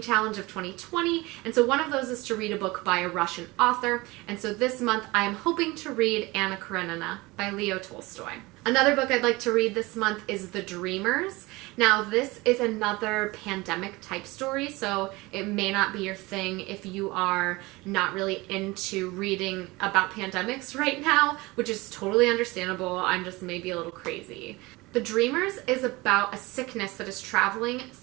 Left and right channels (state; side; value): quieter; left; 22.3 dB